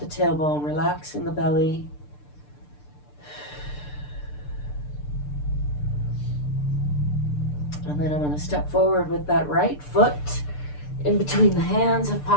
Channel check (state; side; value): late; right; 6.8 ms